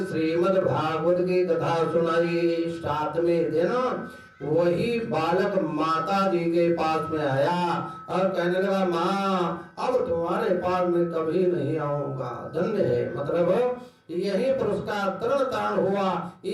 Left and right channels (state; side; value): identical; both; correlation 1.00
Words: श्रीमद् भागवत की कथा सुनाई। 7वें दिन वही बालक माता जी के पास में आया और कहने लगा, माँ अब तुम्हारे पास में कभी नहीं आऊंगा, धन्य है। मतलब यही पर उसका तरण तारण हुआ।